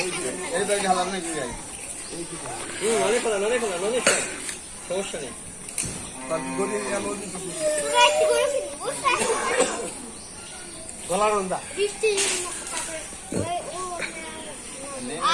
এই ব্যাগ হালাম নাকি যাই সমস্যা নেই গলা রন্দা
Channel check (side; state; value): both; identical; correlation 1.00